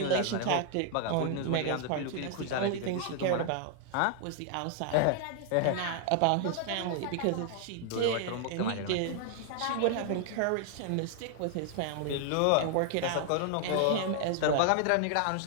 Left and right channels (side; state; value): both; different; correlation 0.00